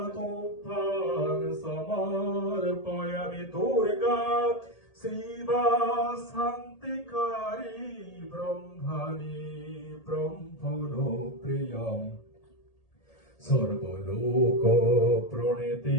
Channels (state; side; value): late; right; 1.8 ms